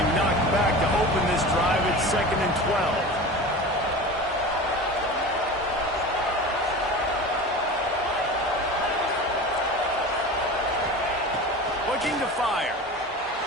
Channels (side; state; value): both; normal; correlation 0.33